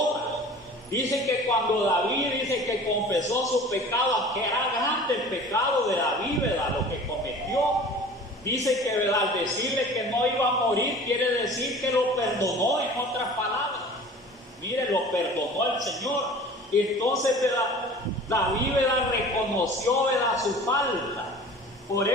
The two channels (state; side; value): normal; both; correlation 0.43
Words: Dice que cuando David dice que confesó su pecado, que era grande el pecado de David, ¿verdad?, lo que cometió. Dice que, ¿verdad?, al decirle que no iba a morir, quiere decir que lo perdonó, en otras palabras. Mire, lo perdonó el Señor. Entonces, ¿verdad?, David, ¿verdad?, reconoció, ¿verdad?, su falta. Por